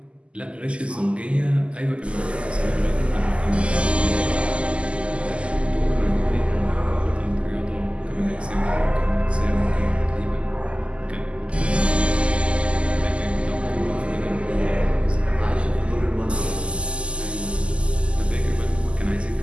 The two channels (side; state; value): left; late; 0.054 ms